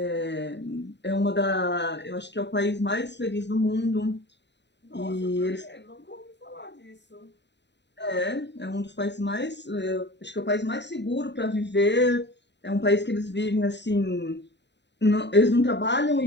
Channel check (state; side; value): late; right; 0.51 ms